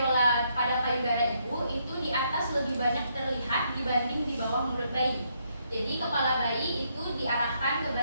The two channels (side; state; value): both; inverted; correlation -0.75